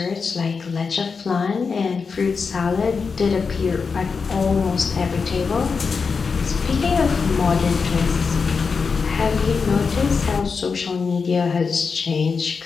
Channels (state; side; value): quieter; right; 5.2 dB